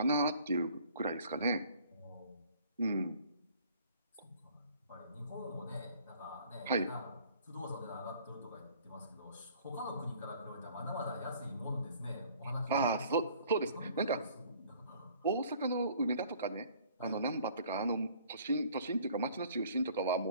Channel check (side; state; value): both; inverted; correlation -0.55